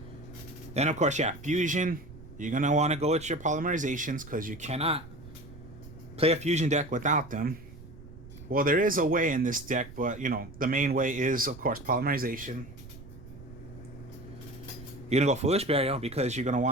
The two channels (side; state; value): right; noise; rumble, 17 dB below the sound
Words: Then, of course, fusion. You're going to want to go with your polymerizations because you cannot play a fusion deck without them. Well, there is a way in this deck, but, the main way is, of course, polymerization. You're going to go Foolish Burial because you're going to